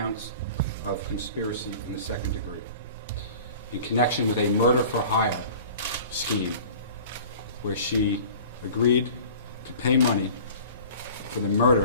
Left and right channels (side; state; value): both; inverted; correlation -0.43